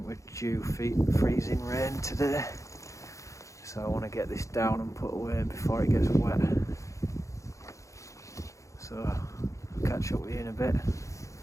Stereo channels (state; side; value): late; right; 0.15 ms